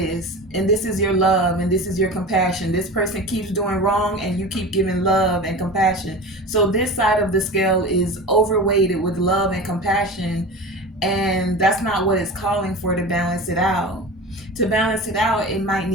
and this is your love and this is your compassion. This person keeps doing wrong and you keep giving love and compassion. So this side of the scale is overweighted with love and compassion, and that's not what it's calling for to balance it out. To balance it out, it might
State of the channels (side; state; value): both; normal; correlation 0.32